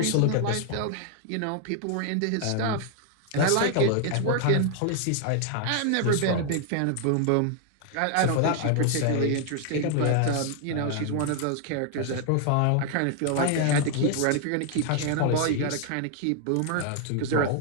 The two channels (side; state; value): both; different; correlation 0.00